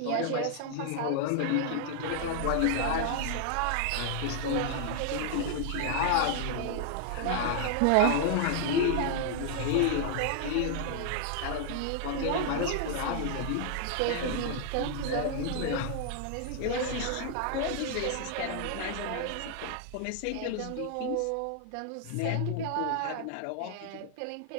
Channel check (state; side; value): different; both; correlation 0.00